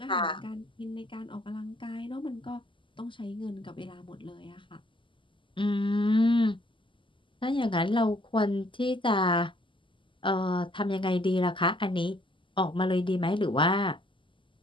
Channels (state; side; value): late; right; 0.25 ms